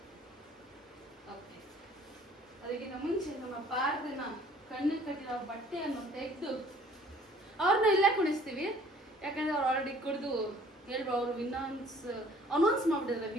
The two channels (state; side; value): normal; both; correlation 0.54